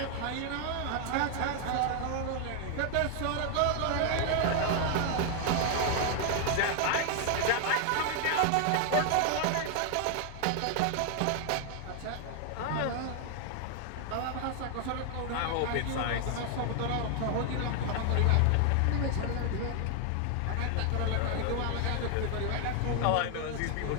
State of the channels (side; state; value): both; different; correlation 0.00